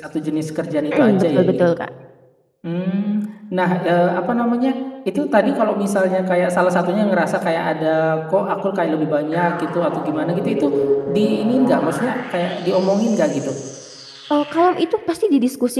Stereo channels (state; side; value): identical; both; correlation 1.00